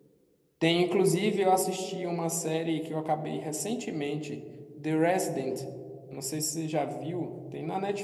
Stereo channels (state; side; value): identical; both; correlation 1.00